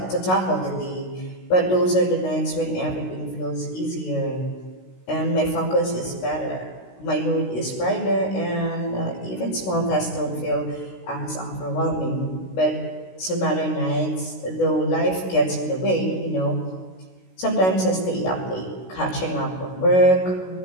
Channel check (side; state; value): right; late; 16 ms